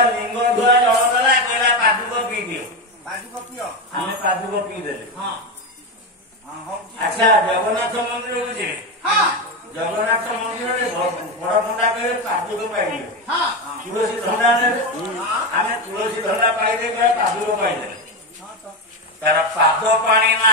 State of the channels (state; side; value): normal; both; correlation 0.14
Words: ଲିଙ୍ଗ ଧୁଆ ଜଳ ଦେଲା କହିଲା ପାଦୁକ ପିଇ ଦିଅ। ପାଦୁକ ପିଅ। ଆମେ ପାଦୁକ ପିଇଦେଲେ। ହଁ ଆଚ୍ଛା ଜଗନ୍ନାଥ ମନ୍ଦିରକୁ ଯିବେ। ଜଗନ୍ନାଥ ମନ୍ଦିରରେ ବଡ ପଣ୍ଡା କହିବେ ପାଦୁକ ପାଇଯିବେ। ତୁଳସୀ ଧଣ୍ଡା ନେବେ। ଆମେ ତୁଳସୀ ଧଣ୍ଡା ପାଇଦେଲେ ପାଦୁକ ପାଇଦେଲେ। ତାର ପାଦ ପାଣି